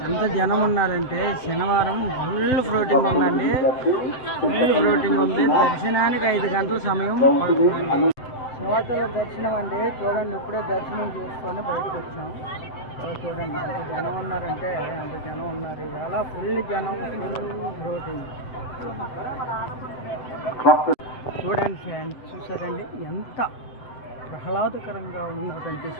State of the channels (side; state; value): right; late; 7.8 ms